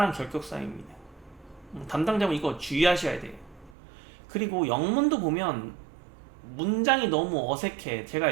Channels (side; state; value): left; drops out; at 3.8 s